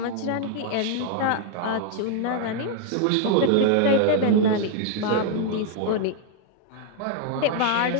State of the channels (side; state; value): both; different; correlation 0.00